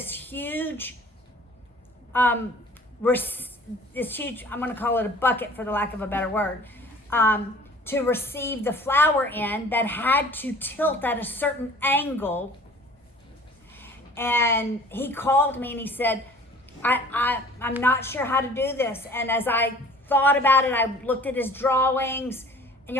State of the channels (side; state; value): both; normal; correlation 0.49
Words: huge, I'm going to call it a bucket for the lack of a better word, to receive the flour in, that had to tilt at a certain angle. And he called me and he said, I'm not sure how to do this. And as I thought about it, I looked at his drawings, and